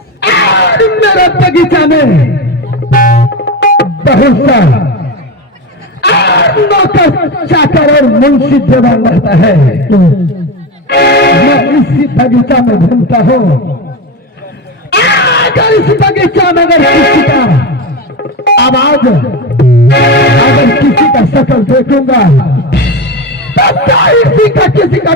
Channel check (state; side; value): normal; both; correlation 0.20